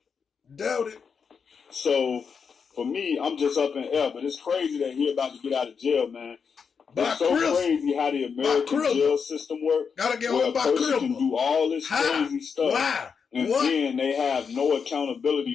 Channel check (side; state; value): right; quieter; 6.1 dB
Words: Doubt it. So, for me, I'm just up in air. But it's crazy that he about to get out of jail, man. It's so crazy how the American jail system works. Gotta get where on a by person can Cribble. do all this crazy stuff. Why? And What? then they have no